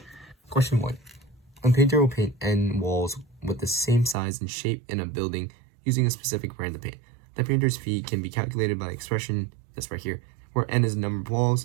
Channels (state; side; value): drops out; left; at 4.2 s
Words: Question 1. A painter will paint end walls with the same size and shape in a building using a specific brand of paint. The painter's fee can be calculated by the expression that's right here, where n is the number of